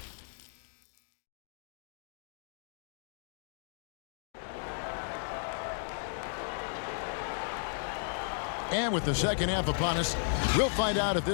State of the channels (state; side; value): silent; right; digital silence